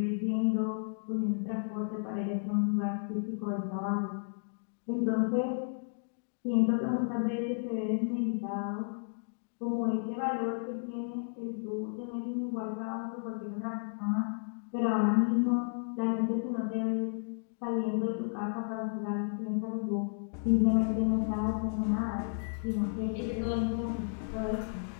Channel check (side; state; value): right; silent; digital silence